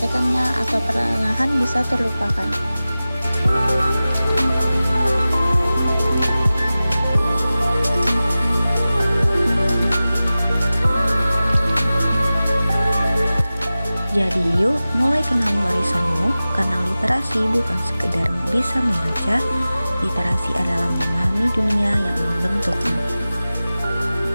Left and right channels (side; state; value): both; inverted; correlation -0.96